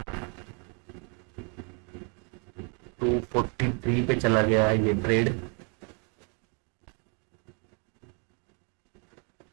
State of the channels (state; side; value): quieter; left; 37.1 dB